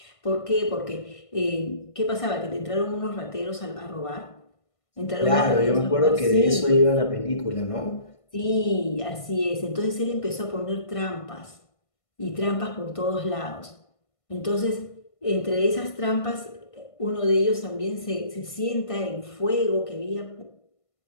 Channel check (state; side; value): late; right; 1.5 ms